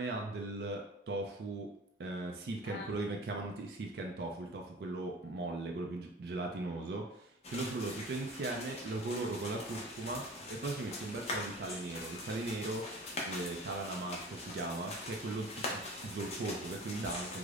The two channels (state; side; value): normal; both; correlation 0.41